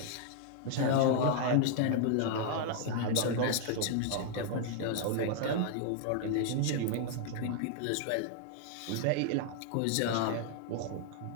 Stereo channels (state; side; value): different; both; correlation 0.00